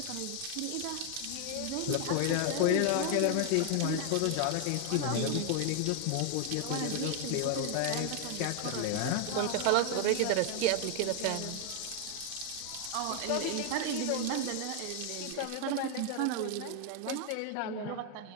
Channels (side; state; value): both; different; correlation 0.00